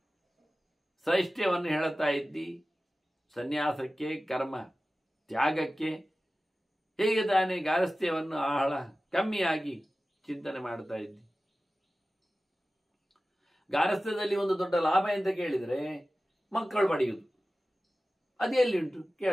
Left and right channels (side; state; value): both; normal; correlation 0.96